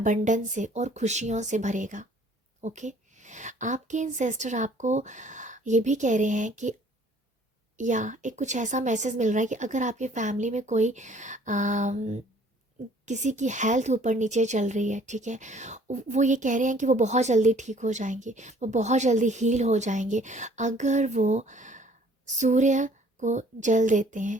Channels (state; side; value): normal; both; correlation 0.56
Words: से और खुशियों से भरेगा, ओके। आपके एंसेस्टर आपको ये भी कह रहे हैं कि, या एक कुछ ऐसा मैसेज मिल रहा है कि अगर आपकी फैमिली में कोई किसी की हेल्थ ऊपर नीचे चल रही है, ठीक है, वो ये कह रहे हैं कि वो बहुत जल्दी ठीक हो जाएंगे, वो बहुत जल्दी हील हो जाएंगे अगर वो सूर्य को जल देते हैं,